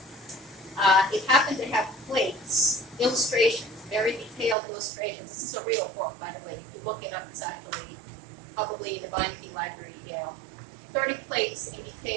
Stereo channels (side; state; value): left; drops out; at 4.5 s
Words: It happened to have plates, illustrations, very detailed illustrations. This is a real book, by the way. If you look it up, it's actually probably in the Beinecke Library, Yale. 30 plates in